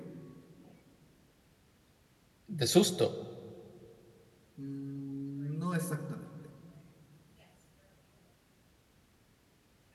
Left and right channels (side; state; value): both; identical; correlation 1.00